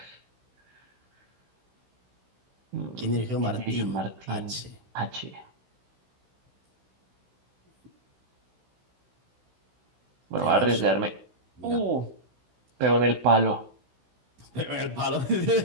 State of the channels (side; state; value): left; late; 16 ms